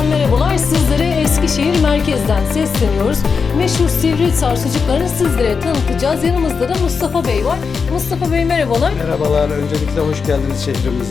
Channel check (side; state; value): right; quieter; 5.4 dB